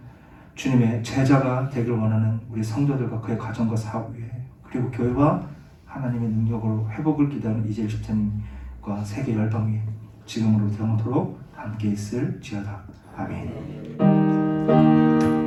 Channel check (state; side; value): identical; both; correlation 1.00